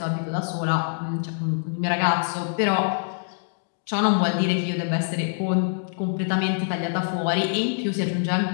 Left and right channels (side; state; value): right; silent; digital silence